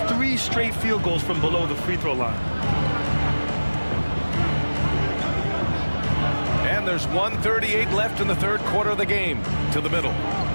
3 straight field goals from below the free throw line. And there's 1:38 left in the third quarter of the game. To the middle.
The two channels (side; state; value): both; inverted; correlation -1.00